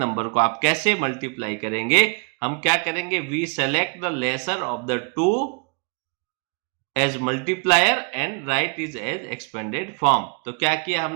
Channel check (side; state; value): left; quieter; 34.2 dB